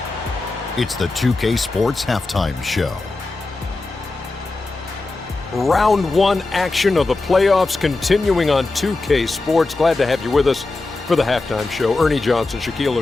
It's the 2K Sports Halftime Show. Round 1 action of the playoffs continuing on 2K Sports. Glad to have you with us for the halftime show. Ernie Johnson, Shaquille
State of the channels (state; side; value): quieter; right; 3.4 dB